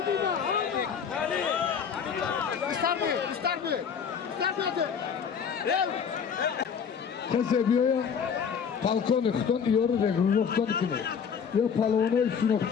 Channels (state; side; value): quieter; right; 6.9 dB